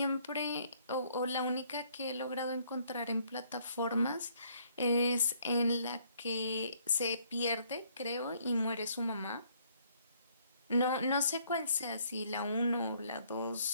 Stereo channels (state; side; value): inverted; both; correlation -0.65